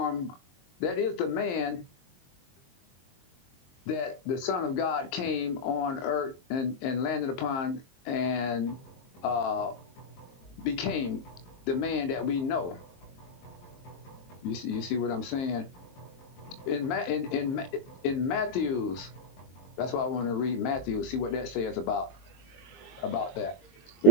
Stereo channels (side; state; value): right; late; 23 ms